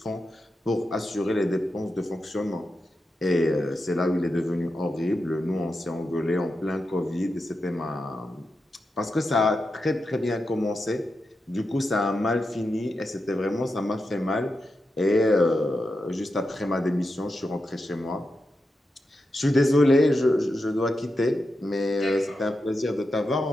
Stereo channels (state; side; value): normal; both; correlation 0.88